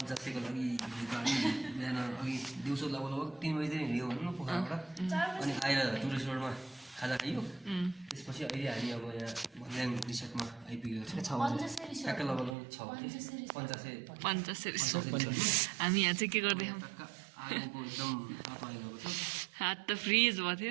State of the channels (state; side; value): drops out; left; at 12.6 s